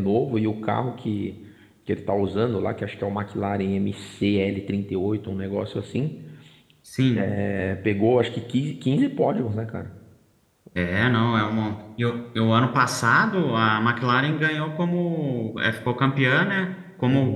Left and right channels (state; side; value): identical; both; correlation 1.00